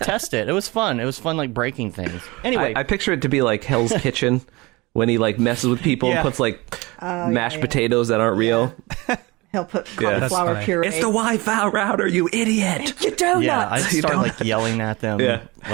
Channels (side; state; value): left; quieter; 23.4 dB